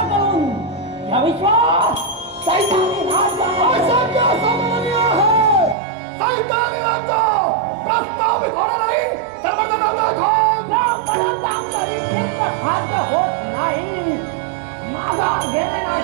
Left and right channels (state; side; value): drops out; left; at 5.8 s